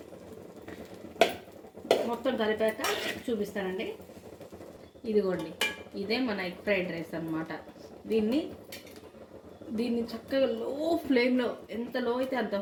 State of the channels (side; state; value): both; identical; correlation 1.00